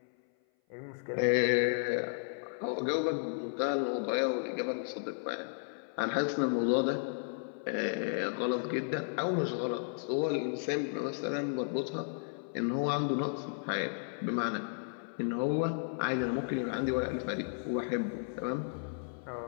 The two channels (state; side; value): silent; right; 55 dB below the other